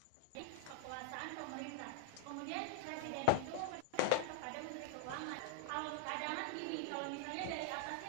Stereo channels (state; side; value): different; both; correlation 0.00